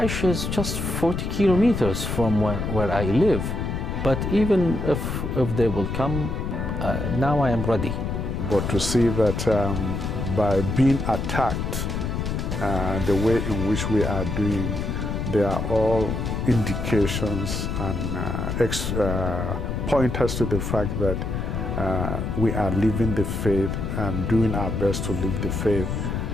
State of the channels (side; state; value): left; noise; rumble, 2 dB below the sound